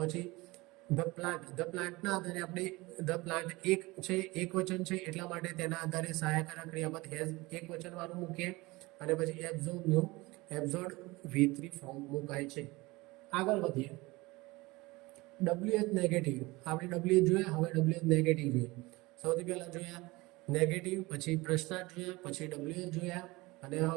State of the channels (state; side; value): quieter; left; 22.1 dB